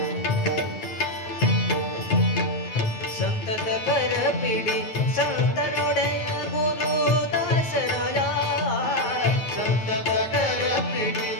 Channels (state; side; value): late; right; 9.4 ms